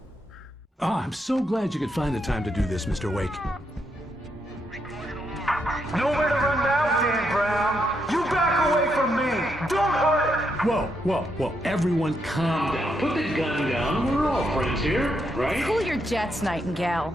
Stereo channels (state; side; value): normal; both; correlation 0.79